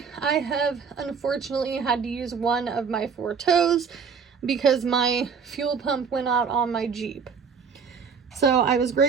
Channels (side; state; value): left; quieter; 6.1 dB